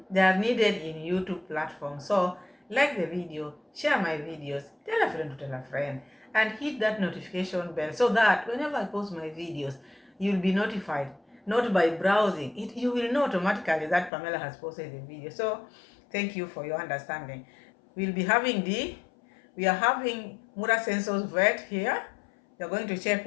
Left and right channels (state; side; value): drops out; right; at 14.1 s